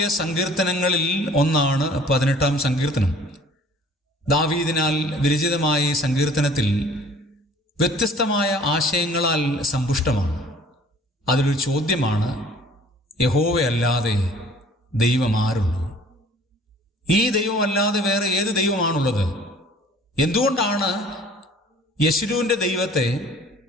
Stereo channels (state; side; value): normal; both; correlation 0.51